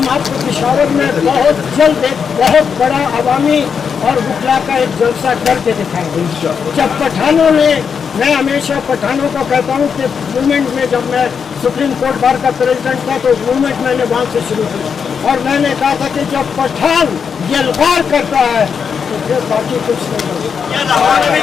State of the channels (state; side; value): quieter; right; 6.5 dB